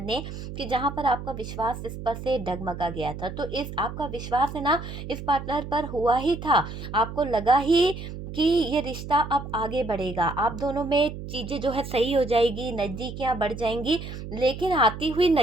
ने कि जहां पर आपका विश्वास इस पर से डगमगा गया था। तो इस आपका विश्वास है ना, इस पार्टनर पर हुआ ही था। आपको लगा ही कि ये रिश्ता अब आगे बढ़ेगा, आप दोनों में चीज़ें जो है सही हो जाएगी, नज़दीकियां बढ़ जाएंगी। लेकिन आती हुई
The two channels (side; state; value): right; noise; hum, 9 dB below the sound